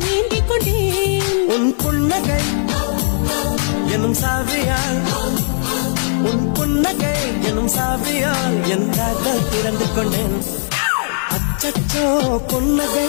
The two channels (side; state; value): right; silent; digital silence